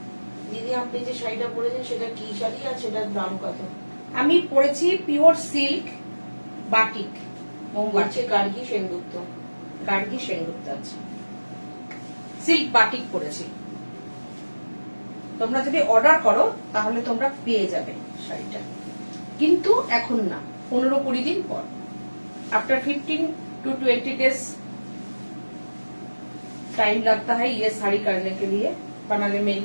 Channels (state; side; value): inverted; both; correlation -1.00